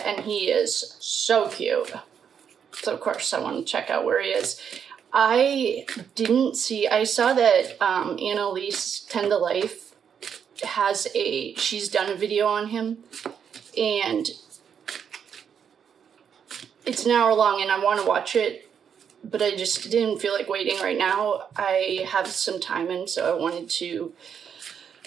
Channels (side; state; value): left; quieter; 7.7 dB